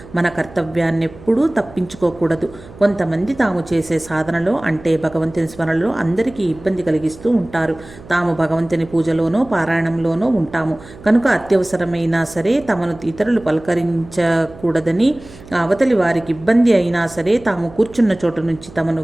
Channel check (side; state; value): right; noise; hum, 20 dB below the sound